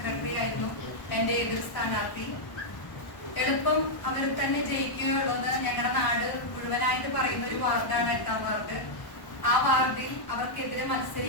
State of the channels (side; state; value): right; late; 1.1 ms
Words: ആയിരുന്നു എന്റെ എതിർ സ്ഥാനാർത്ഥി. എളുപ്പം അവർ തന്നെ ജയിക്കുകയുള്ളൂ എന്ന് ഞങ്ങളുടെ നാട് മുഴുവനായിട്ട് പറയുന്ന ഒരു വാർഡാണ് 8ാം വാർഡ്. ആ വാർഡിൽ അവർക്കെതിരെ